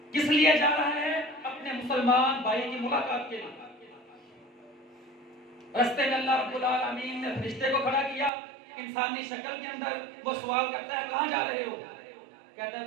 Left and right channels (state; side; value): drops out; left; at 8.3 s